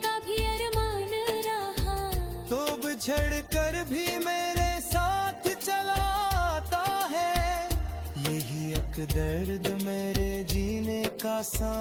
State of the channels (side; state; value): both; identical; correlation 1.00